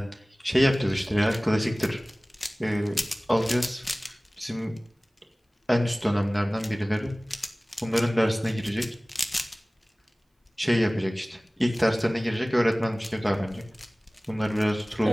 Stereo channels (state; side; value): normal; both; correlation 0.98